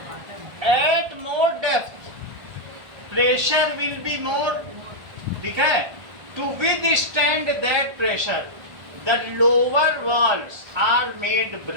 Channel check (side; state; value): left; late; 1.5 ms